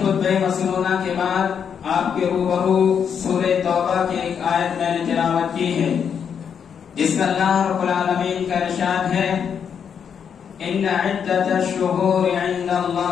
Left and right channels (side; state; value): right; quieter; 7.5 dB